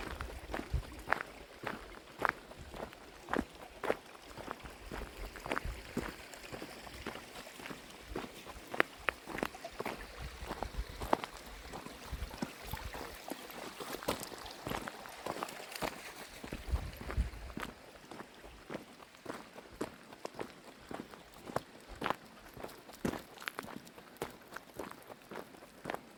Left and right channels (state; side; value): identical; both; correlation 1.00